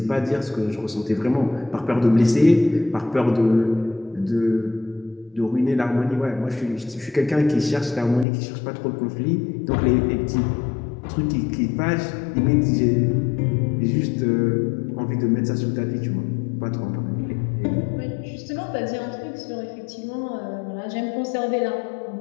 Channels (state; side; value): drops out; right; at 8.2 s